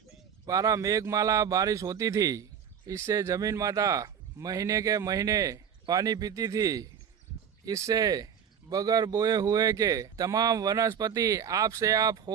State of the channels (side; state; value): left; quieter; 8.0 dB